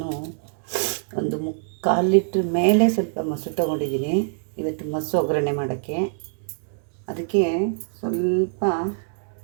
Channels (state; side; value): silent; left; digital silence